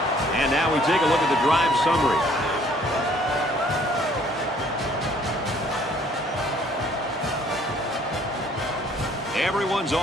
And now we take a look at the drive summary. Everyone's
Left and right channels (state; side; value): normal; both; correlation 0.60